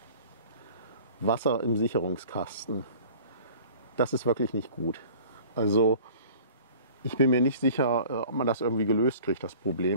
Wasser im Sicherungskasten. Das ist wirklich nicht gut. Also ich bin mir nicht sicher, ob man das irgendwie gelöst kriegt, das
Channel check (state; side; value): inverted; both; correlation -0.46